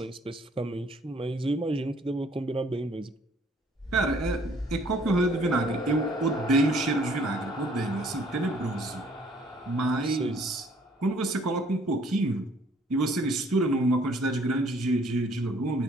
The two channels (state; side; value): normal; both; correlation 0.60